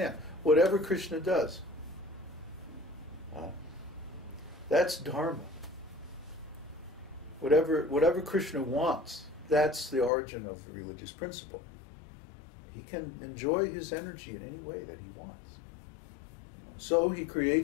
Whatever Krishna does, that's dharma. Whatever Krishna wants, that's the origin of the religious principle. He can enjoy his energy in any way that he wants. You know, so he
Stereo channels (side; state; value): right; drops out; at 10.1 s